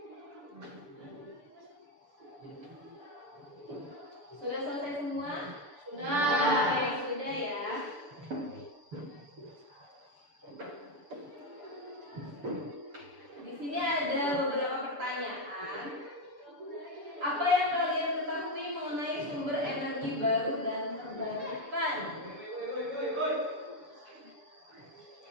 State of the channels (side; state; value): left; late; 6.9 ms